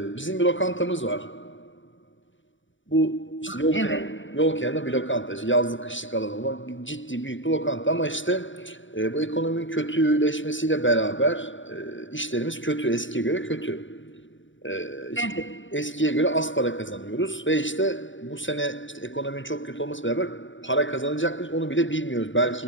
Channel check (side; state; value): right; late; 0.56 ms